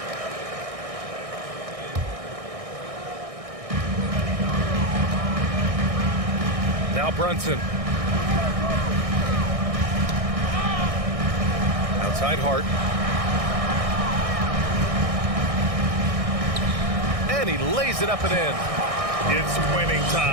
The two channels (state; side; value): late; left; 1.6 ms